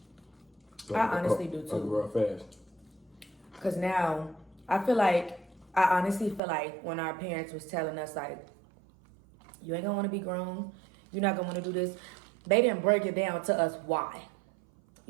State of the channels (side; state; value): left; drops out; at 6.4 s